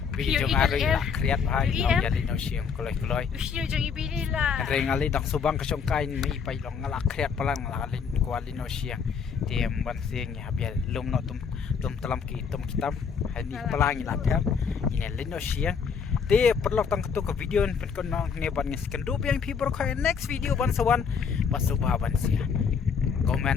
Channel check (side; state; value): right; quieter; 6.3 dB